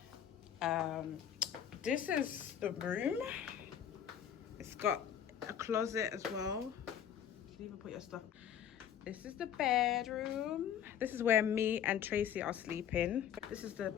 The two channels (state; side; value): quieter; right; 9.3 dB